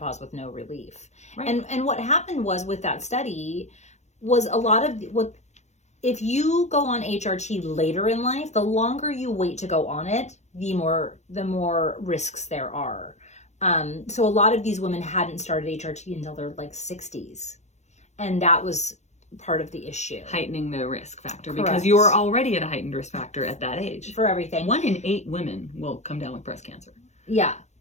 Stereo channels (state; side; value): late; right; 0.33 ms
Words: with no relief. Right. And what happened was with that study was a lot of if you go on HRT later in life, the longer you wait to go on it, the more risks there are. So a lot of these women hadn't started HRT until their like 60s. And that was part of the issue. Heightening the risk factor. Correct. Because you're already at a heightened risk factor at that age. For everything. 1 in 8 women will come down with breast cancer. Yeah.